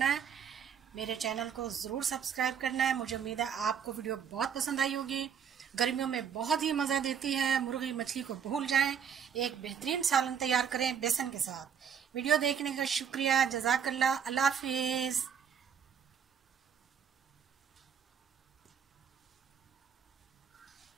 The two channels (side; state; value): left; quieter; 7.8 dB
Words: है। मेरे चैनल को ज़रूर सब्सक्राइब करना है। मुझे उम्मीद है आपको वीडियो बहुत पसंद आई होगी। गर्मियों में बहुत ही मज़ा देती है। मुर्गी मछली को भूल जाएं, एक बेहतरीन सालन तैयार करें बेसन के साथ। वीडियो देखने का शुक्रिया। जज़ाकल्लाह। अल्लाह हाफिज़।